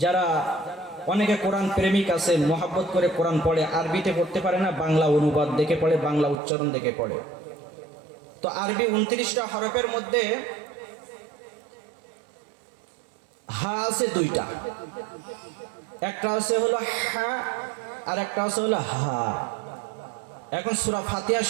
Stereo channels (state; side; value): drops out; left; at 6.4 s